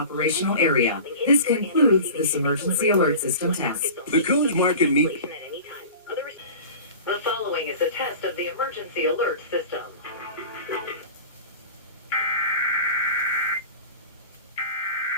Area. This concludes this emergency alert system test. The Coons Market Meat. The following is a test of the emergency alert system.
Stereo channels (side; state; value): both; inverted; correlation -0.36